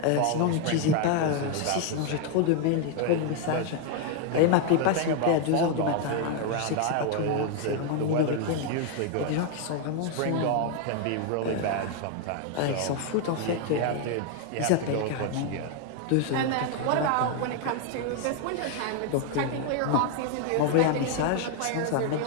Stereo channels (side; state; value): both; different; correlation 0.01